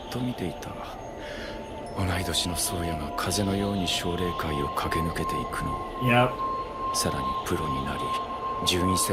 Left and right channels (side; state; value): both; identical; correlation 1.00